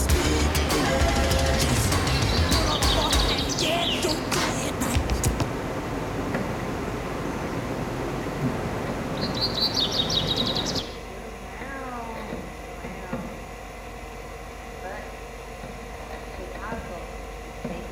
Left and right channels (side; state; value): both; identical; correlation 1.00